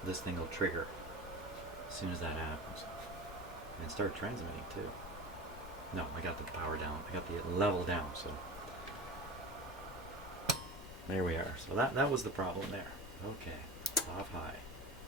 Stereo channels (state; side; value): normal; both; correlation 0.32